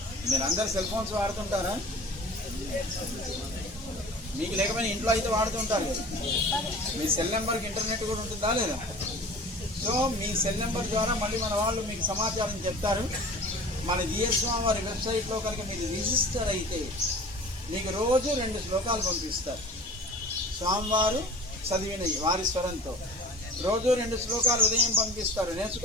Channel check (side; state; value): both; normal; correlation 0.40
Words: మీరందరూ సెల్ ఫోన్స్ వాడుతుంటారా? మీకు లేకపోయినా ఇంట్లో అయితే వాడుతుంటారు కదా. మీ సెల్ నెంబర్కి ఇంటర్నెట్ కూడా ఉంటుందా లేదా? సో మీ సెల్ నెంబర్ ద్వారా మళ్ళీ మన వాళ్ళు మీకు సమాచారం చెప్తారు. మన జిఎస్వామి వారి వెబ్సైట్లో కనుక మీరు రిజిస్టర్ అయితే మీకు రోజు 2 శ్లోకాలు పంపిస్తారు. స్వామివారు చదివినవి వారి స్వరంతో రోజు 2 శ్లోకాలు ఉదయం పంపిస్తారు.